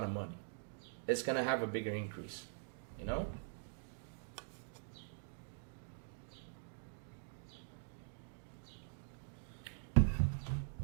of money. It's going to have a bigger increase, you know?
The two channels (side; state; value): left; silent; digital silence